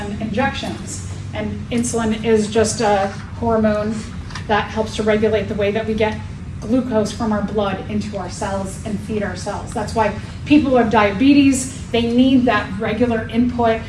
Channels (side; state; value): both; identical; correlation 1.00